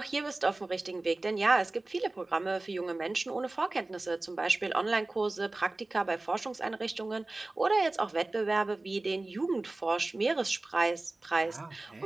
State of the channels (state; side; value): quieter; left; 3.0 dB